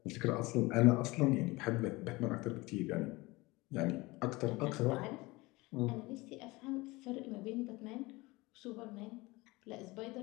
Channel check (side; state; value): right; quieter; 22.2 dB